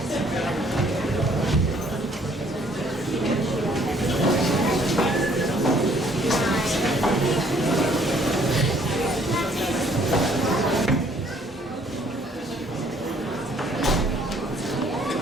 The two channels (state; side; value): normal; both; correlation 0.62